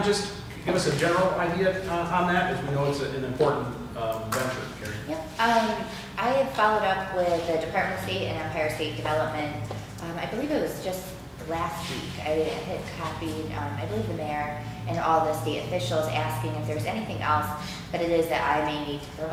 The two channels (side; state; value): both; identical; correlation 1.00